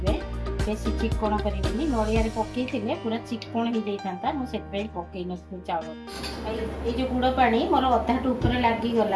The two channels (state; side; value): identical; both; correlation 1.00